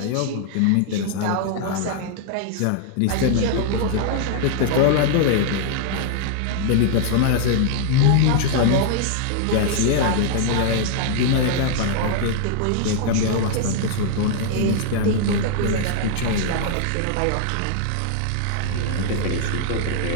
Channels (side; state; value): both; different; correlation 0.00